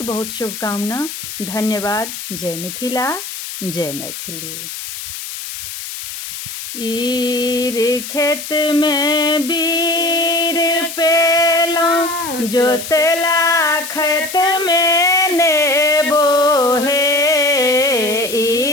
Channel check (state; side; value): noise; left; hiss, 9 dB below the sound